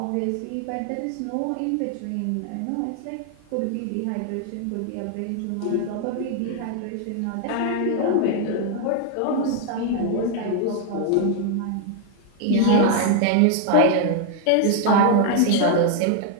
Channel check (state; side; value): different; both; correlation 0.00